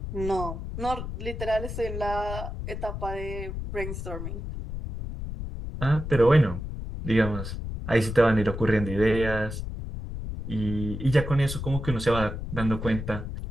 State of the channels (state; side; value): noise; left; rumble, 6 dB below the sound